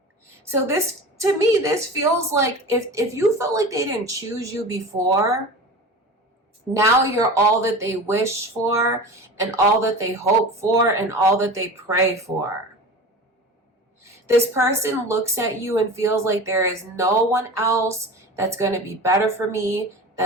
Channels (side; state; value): both; normal; correlation 0.33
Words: So this, to me, this feels like if you felt like they didn't choose you before, now you're all that they wish for and all that they hope for and all that they pray for. This person looks at you and feels like there is no one else that's going to be better for me